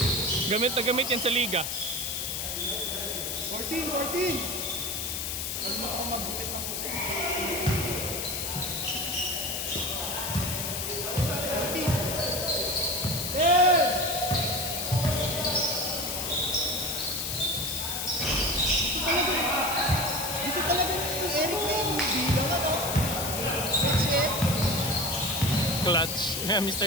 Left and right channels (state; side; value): noise; left; hiss, 3 dB below the sound